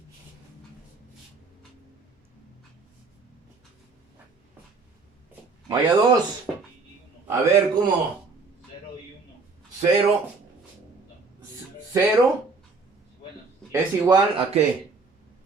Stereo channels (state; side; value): quieter; left; 4.2 dB